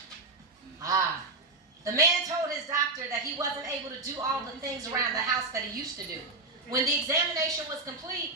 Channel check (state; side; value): quieter; left; 3.3 dB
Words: The man told his doctor that he wasn't able to do all the things around the house that he used to do. When the examination was complete,